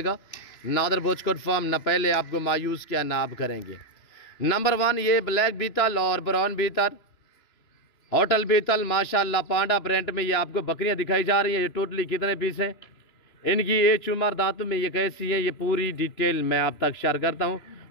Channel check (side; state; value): right; late; 2.9 ms